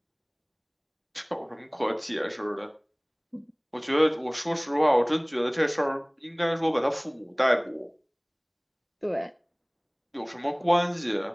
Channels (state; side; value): identical; both; correlation 1.00